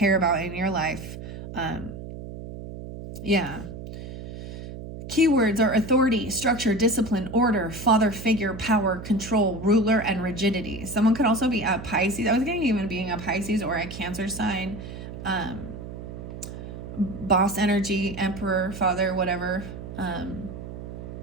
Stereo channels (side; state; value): right; noise; hum, 10 dB below the sound